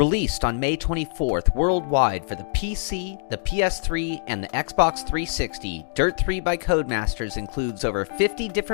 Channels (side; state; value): right; silent; digital silence